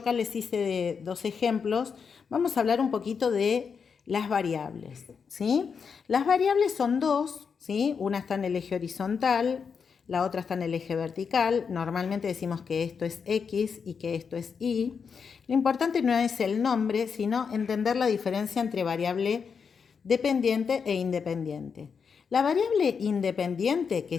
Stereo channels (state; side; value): quieter; right; 6.1 dB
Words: les hice dos ejemplos, vamos a hablar un poquito de las variables, ¿sí? Las variables son dos, ¿sí? Una está en el eje horizontal, la otra está en el eje vertical. Normalmente decimos que esto es X y que esto es Y. Lo importante no es el nombre, sino entender la diferencia entre variable dependiente e independiente. La variable independiente, que